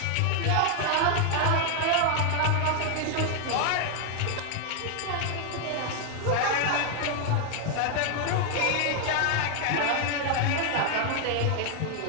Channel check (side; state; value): both; different; correlation 0.00